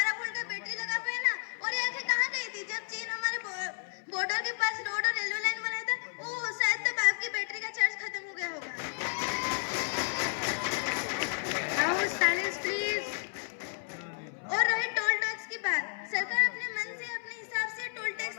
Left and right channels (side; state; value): right; silent; 56 dB below the other